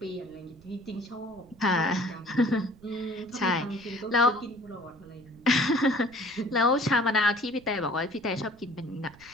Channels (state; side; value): noise; right; rumble, 25 dB below the sound